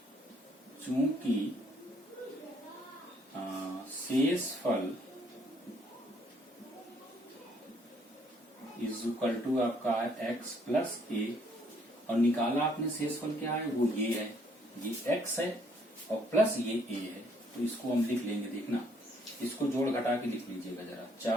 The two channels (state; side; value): normal; both; correlation 0.66